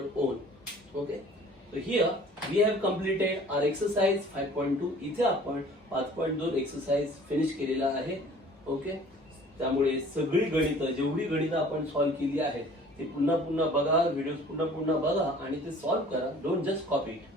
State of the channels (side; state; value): both; normal; correlation 0.50